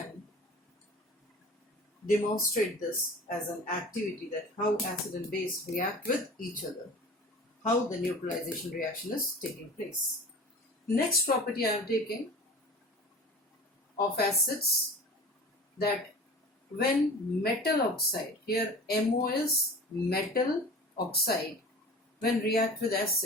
demonstrate this as an activity, that how acid and base react with each other, how the neutralization reaction is taking place. Next property I am taking of acids, that when metal oxide, here MO is metal oxide, when react with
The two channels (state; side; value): normal; both; correlation 0.39